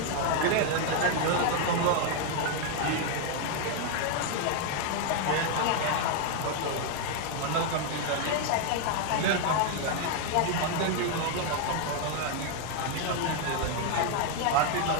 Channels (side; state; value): both; different; correlation 0.00